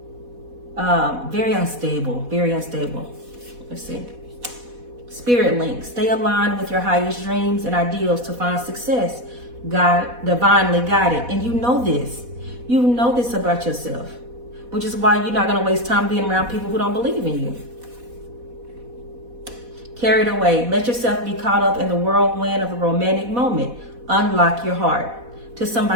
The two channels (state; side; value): late; left; 4.1 ms